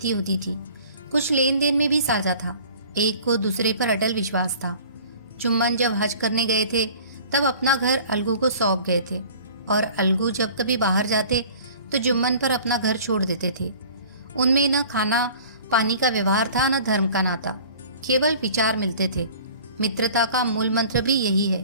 होती थी। कुछ लेन देन में भी साझा था। एक को दूसरे पर अटल विश्वास था। जुम्मन जब हज करने गए थे तब अपना घर अलगू को सौंप गए थे और अलगू जब कभी बाहर जाते तो जुम्मन पर अपना घर छोड़ देते थे। उनमें न खाना पानी का व्यवहार था न धर्म का नाता, केवल विचार मिलते थे। मित्रता का मूल मंत्र भी यही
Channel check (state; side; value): inverted; both; correlation -0.47